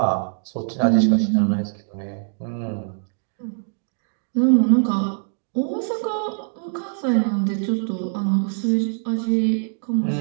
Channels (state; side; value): silent; left; 64 dB below the other